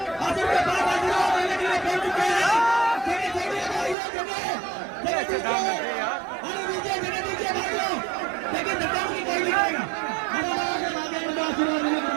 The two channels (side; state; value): left; drops out; at 4.0 s